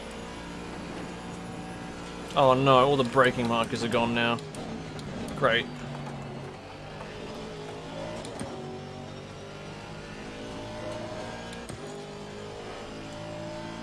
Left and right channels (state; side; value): identical; both; correlation 1.00